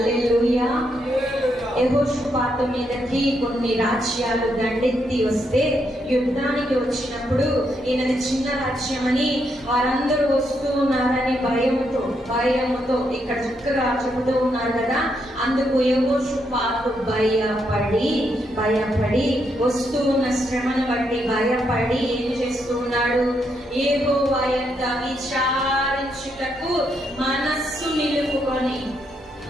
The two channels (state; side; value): normal; both; correlation 0.78